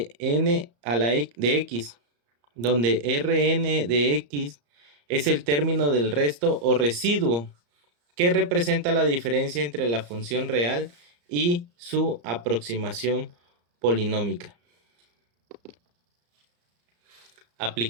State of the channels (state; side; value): late; left; 34 ms